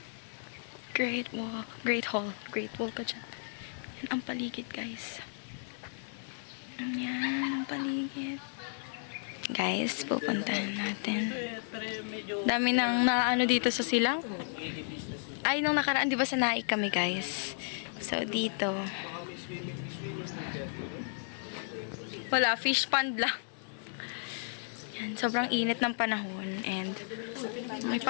Great wall. Great hall. Great wall ka dyan. Yan ang paligid, guys. Yan ang paligid. Guys, pupuntahan natin. Dami nang naano dito sa silang. Ay, nung nakaraan, di ba sa Naik kami, guys? So, dito. Wala, fish pond lang. Yan, sobrang init ng panahon. And, may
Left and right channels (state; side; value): silent; right; digital silence